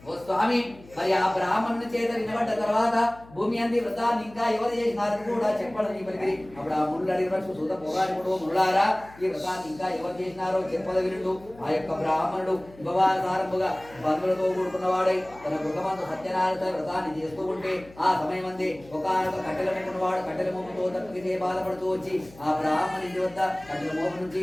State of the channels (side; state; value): left; noise; hum, 22 dB below the sound